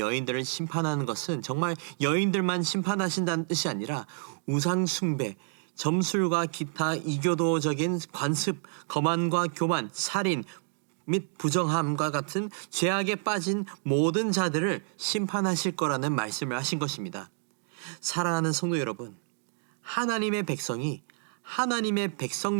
심판하는 것은 정말 여인들만 심판하신다는 뜻이 아니라 우상 숭배, 점술과 기타 이교도적인 관습, 거만과 교만, 살인 및 부정함과 같은 죄악에 빠진 모든 자들을 심판하실 거라는 말씀을 하신 것입니다. 사랑하는 성도 여러분, 하나님의 백성이 하나님의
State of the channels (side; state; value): left; silent; 57 dB below the other